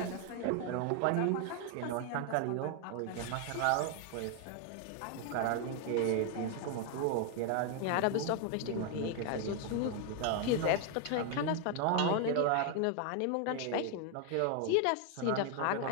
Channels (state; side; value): different; both; correlation 0.00